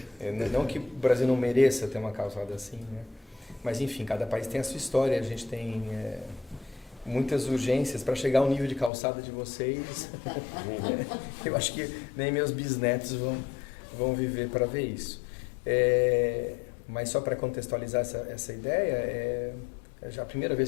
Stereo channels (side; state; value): right; drops out; at 8.9 s